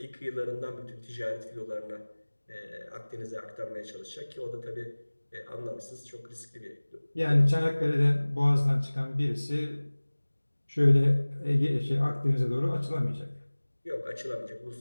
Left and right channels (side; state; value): both; inverted; correlation -1.00